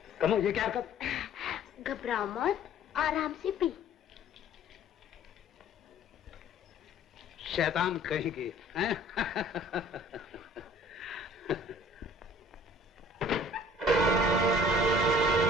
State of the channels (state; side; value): normal; both; correlation 0.51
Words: कम्मा ये क्या हरकत? घबराओ मत, आराम से पी। शैतान कहेंगे, हैं?